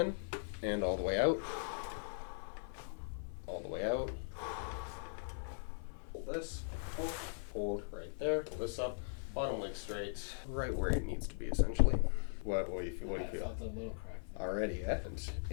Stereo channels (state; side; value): silent; right; 51 dB below the other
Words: and all the way out. All the way out. Hold this. Hold right there. Pull this up. Bottom leg straight. Right where it needs to be, essentially. What do you feel? What do you feel? I felt a little crack there. Already, yeah. And